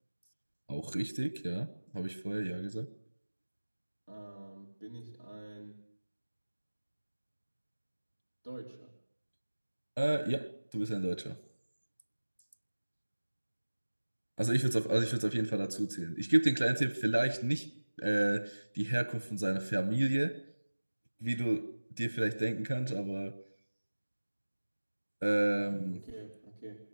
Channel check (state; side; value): inverted; both; correlation -1.00